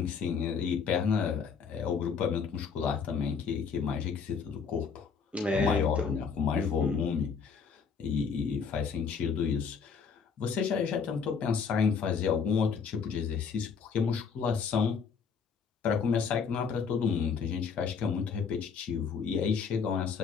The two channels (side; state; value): right; quieter; 6.0 dB